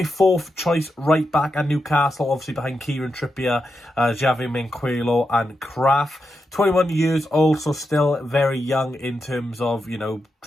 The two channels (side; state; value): both; normal; correlation 0.87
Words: fourth choice right back at Newcastle, obviously behind Kieran Trippier, Javi Manquillo and Kraft. 21 years old, so still very young in terms of, you know,